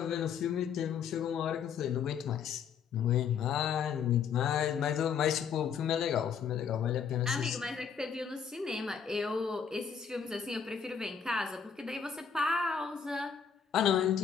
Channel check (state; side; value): quieter; right; 7.1 dB